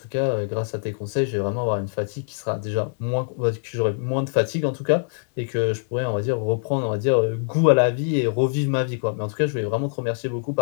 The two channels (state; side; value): silent; right; digital silence